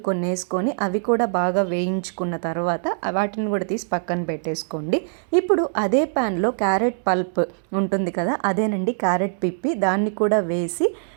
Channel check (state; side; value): silent; left; 64 dB below the other